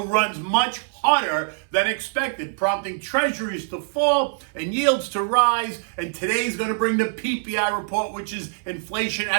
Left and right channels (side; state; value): left; silent; 63 dB below the other